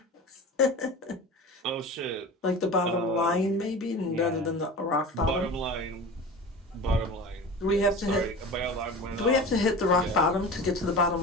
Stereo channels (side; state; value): both; normal; correlation 0.34